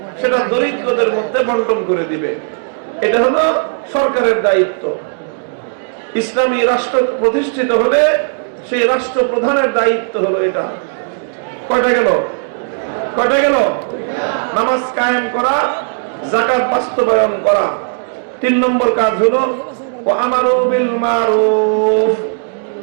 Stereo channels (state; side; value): silent; left; digital silence